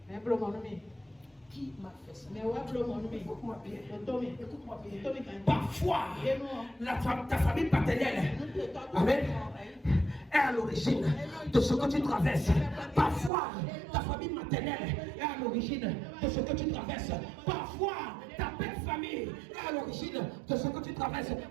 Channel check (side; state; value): left; drops out; at 13.3 s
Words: Qui m'a fait ça? Écoute-moi bien. Parfois, ta famille paternelle, amen, est à l'origine de ce que tu traverses. Parfois, ta famille maternelle est à l'origine de ce que tu traverses. Parfois, ta belle famille est à l'origine de ce que tu traverses.